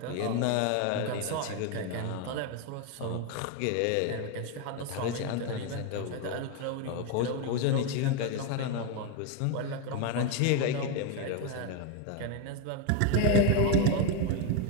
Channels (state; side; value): different; both; correlation 0.02